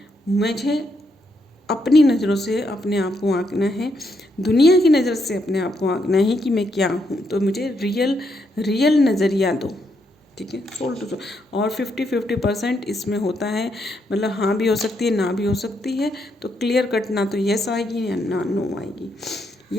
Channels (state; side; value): normal; both; correlation 0.78